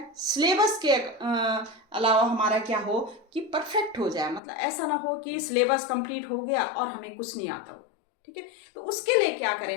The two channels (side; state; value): right; drops out; at 4.4 s